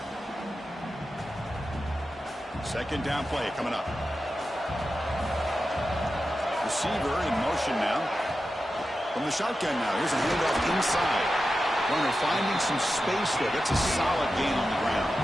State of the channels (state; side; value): normal; both; correlation 0.91